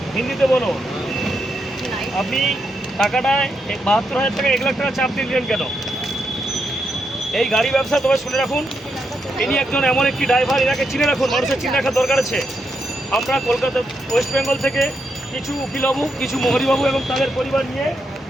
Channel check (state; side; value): normal; both; correlation 0.82